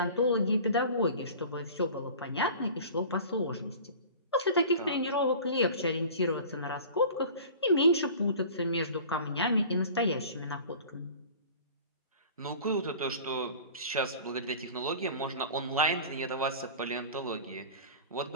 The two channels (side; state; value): both; inverted; correlation -0.40